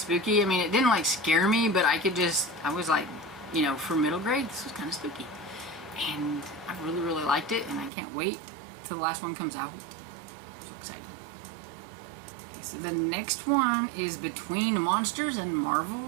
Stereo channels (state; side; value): drops out; left; at 7.9 s